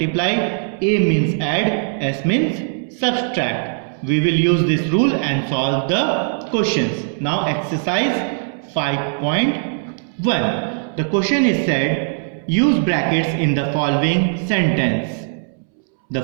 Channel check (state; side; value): silent; left; 66 dB below the other